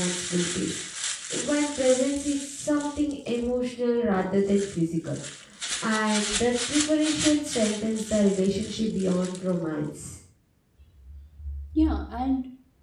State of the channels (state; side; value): identical; both; correlation 1.00